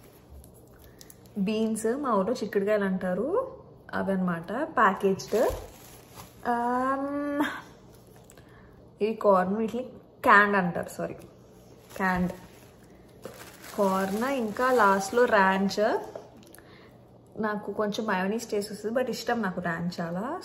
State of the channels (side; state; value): both; identical; correlation 1.00